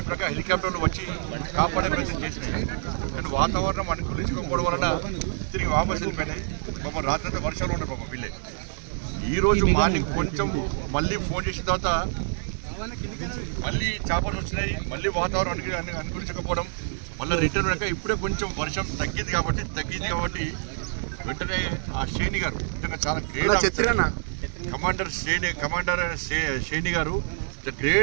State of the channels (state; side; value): silent; left; 60 dB below the other